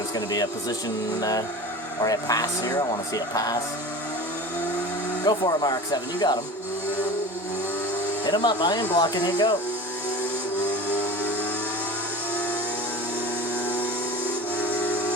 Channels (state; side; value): normal; both; correlation 0.35